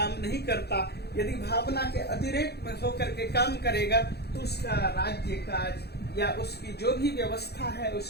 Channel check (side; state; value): right; late; 0.47 ms